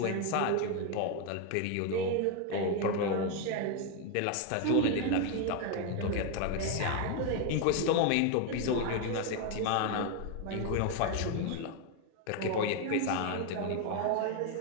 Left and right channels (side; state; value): both; different; correlation 0.02